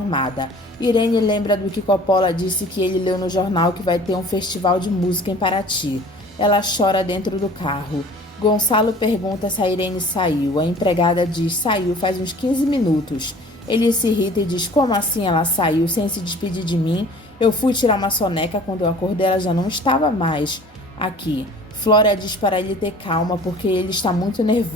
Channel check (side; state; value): both; normal; correlation 0.48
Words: Irene lembra do que Coppola disse que ele leu no jornal que vai ter um festival de música em Paraty. Ela chora dentro do carro. Gonçalo pergunta se a Irene saiu. A empregada diz: saiu faz uns 15 minutos. Ele se irrita e diz: como assim ela saiu sem se despedir de mim? Eu fui tirar uma soneca, quando eu acordei ela já não estava mais aqui. Flora diz para ele ter calma porque ele está muito